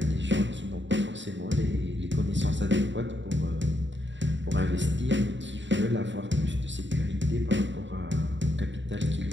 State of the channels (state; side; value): late; left; 0.54 ms